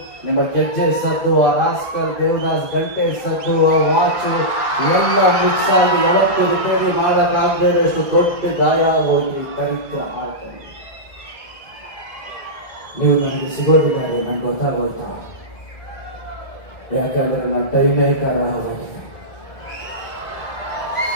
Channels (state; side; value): late; right; 2.0 ms